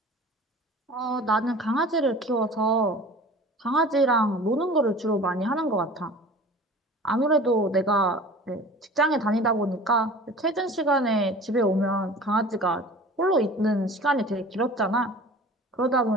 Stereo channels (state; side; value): normal; both; correlation 0.42